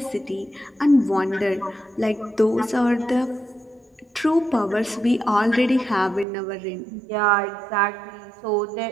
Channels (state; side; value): drops out; left; at 6.2 s